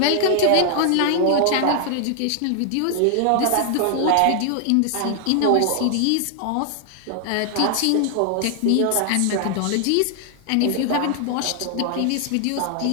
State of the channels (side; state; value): both; different; correlation 0.00